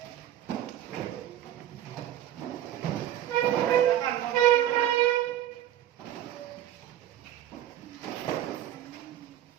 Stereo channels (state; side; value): quieter; left; 12.1 dB